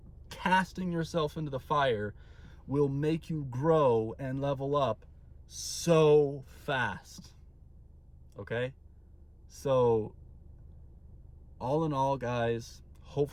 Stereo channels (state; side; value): identical; both; correlation 1.00